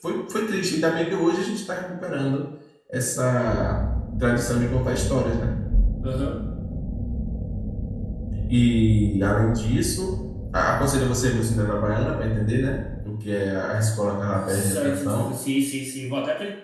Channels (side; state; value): both; identical; correlation 1.00